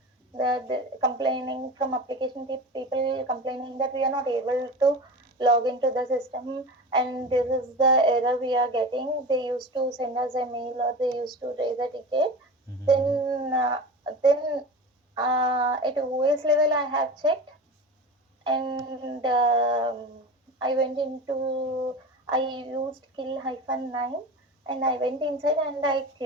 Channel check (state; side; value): normal; both; correlation 0.30